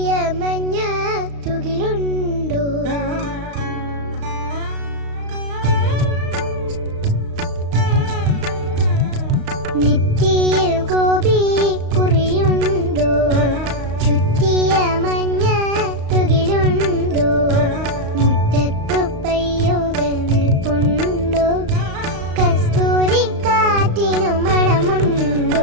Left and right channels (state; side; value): late; left; 35 ms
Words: മഞ്ഞ തുകിലുണ്ടോ, നെറ്റിയിൽ ഗോപി കുറിയുണ്ടോ, ചുറ്റിയ മഞ്ഞ തുകിലുണ്ടോ, മുറ്റത്തു പയ്യുകൾ നിൽപ്പുണ്ടോ, കസ്തൂരി കാറ്റിനു